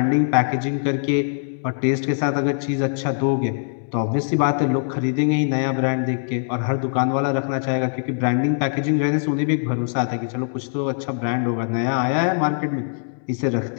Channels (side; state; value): right; silent; digital silence